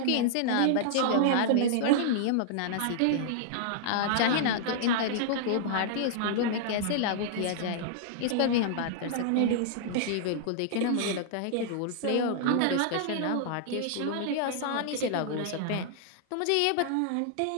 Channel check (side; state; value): both; different; correlation -0.01